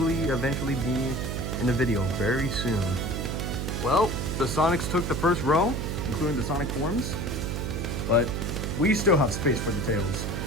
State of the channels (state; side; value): noise; right; hum, 2 dB below the sound